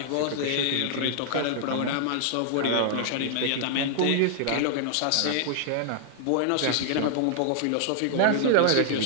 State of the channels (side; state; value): both; different; correlation -0.01